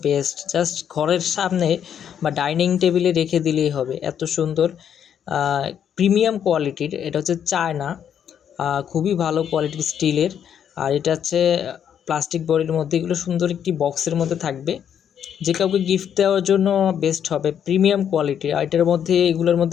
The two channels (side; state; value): right; quieter; 8.8 dB